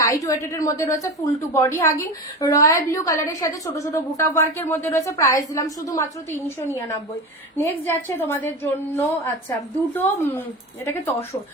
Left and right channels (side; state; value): both; normal; correlation 0.26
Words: ওয়েটেড এর মধ্যে রয়েছে, full to body hugging, royal blue কালারের সাথে ছোট ছোট বুটা ওয়ার্কের মধ্যে রয়েছে। প্রাইস দিলাম শুধুমাত্র 399। নেক্সট যাচ্ছে তোমাদের জন্য, আচ্ছা দুটো এটাকে